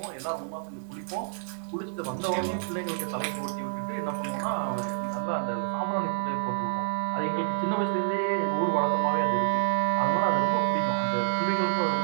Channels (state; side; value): silent; left; 59 dB below the other